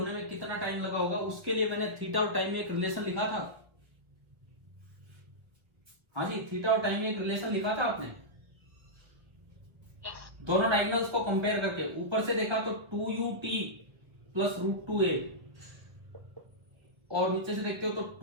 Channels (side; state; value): left; late; 1.3 ms